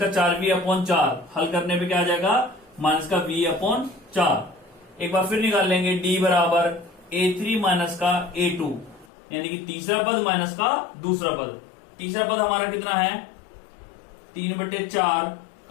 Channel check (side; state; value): right; drops out; at 9.1 s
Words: 4V/4। हल करने पे क्या आ जाएगा? माइनस का V/4। एक बार फिर निकाल लेंगे D बराबर A3 माइनस का A2, यानी कि तीसरा पद माइनस का दूसरा पद। तीसरा पद हमारा कितना है? 3/4